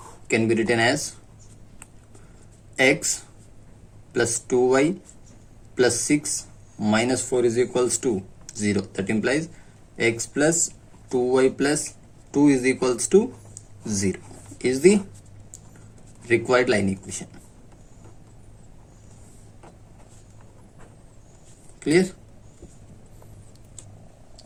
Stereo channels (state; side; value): identical; both; correlation 1.00